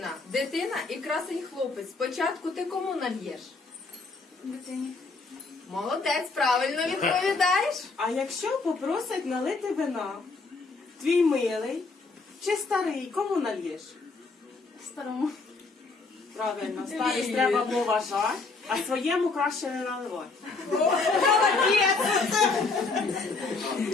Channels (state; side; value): quieter; right; 3.9 dB